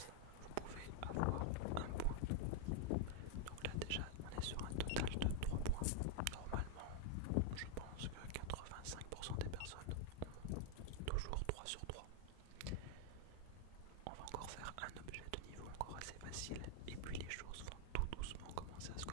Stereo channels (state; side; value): different; both; correlation 0.00